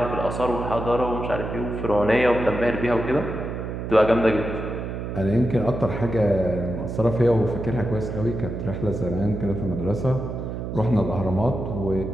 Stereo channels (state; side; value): noise; right; hum, 5 dB below the sound